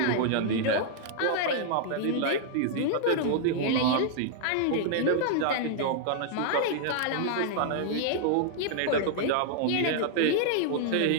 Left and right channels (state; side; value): different; both; correlation -0.01